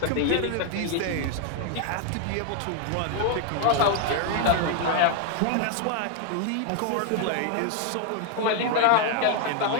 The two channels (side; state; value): both; different; correlation 0.00